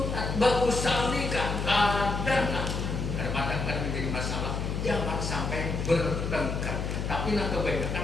usolli kadang-kadang kan menjadi masalah. Jangan sampai bertengkar. Tapi nak kebanyakan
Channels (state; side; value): noise; left; hum, 2 dB below the sound